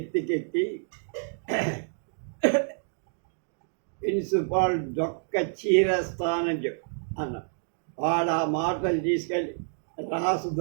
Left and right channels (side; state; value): left; silent; digital silence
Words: ప్రిన్సిపాల్ డొక్క చీరేస్తానని చెప్పు అన్నాడు. వాడు ఆ మాటలు తీసుకెళ్ళి